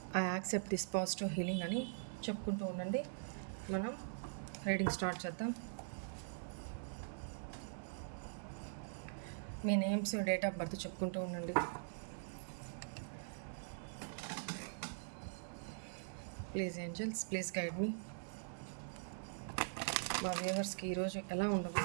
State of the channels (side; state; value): left; silent; digital silence